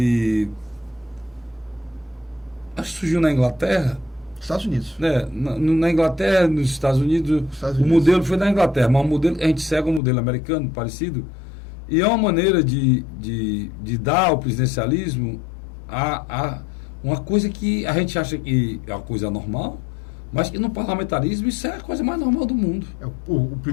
acho que surgiu na Inglaterra. Estados Unidos. Na Inglaterra, nos Estados Unidos, o modelo foi na Inglaterra, mas o modelo, a gente segue um modelo americano parecido, e é uma maneira de dar ao presidencialismo uma coisa que a gente acha que é uma coisa normal, mas que no parlamentarismo isso é a coisa mais normal do mundo. O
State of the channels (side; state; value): right; drops out; at 10.0 s